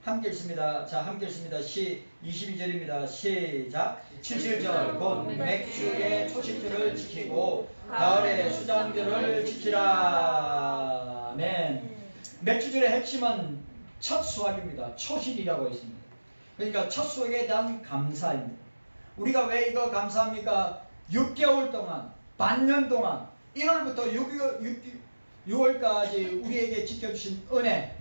함께 읽습니다. 자, 함께 읽습니다. 22절입니다. 시작. 7절 곧 맥주의 초실절을 지키고 가을의 수장절을 지키라. 아멘. 맥주절의 핵심은 첫 수확입니다. 초실이라고 있습니다. 그러니까 첫 수확에 대한 감사입니다. 우리가 왜 이거 감사합니까? 6개월 동안, 반년 동안, 1월부터 6월까지 우리에게 지켜주신 은혜,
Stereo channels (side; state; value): both; inverted; correlation -1.00